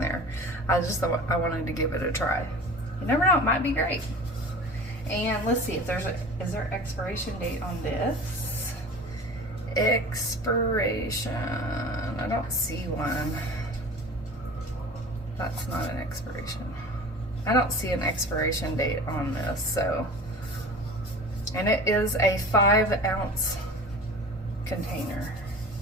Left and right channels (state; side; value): normal; both; correlation 0.38